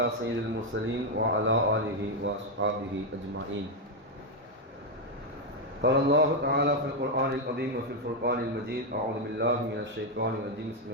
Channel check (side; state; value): both; normal; correlation 0.03